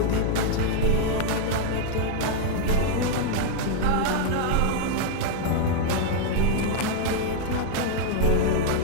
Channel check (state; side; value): different; both; correlation -0.01